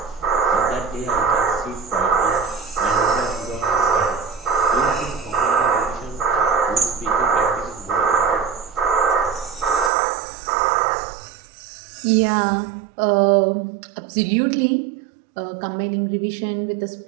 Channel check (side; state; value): left; drops out; at 9.9 s